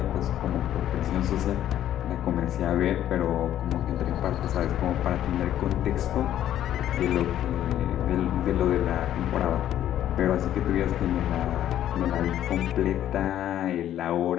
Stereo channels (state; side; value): quieter; right; 11.6 dB